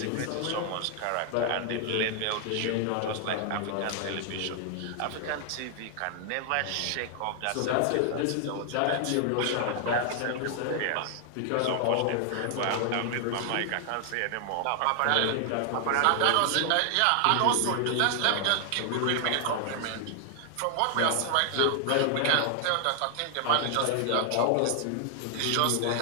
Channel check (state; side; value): different; both; correlation 0.00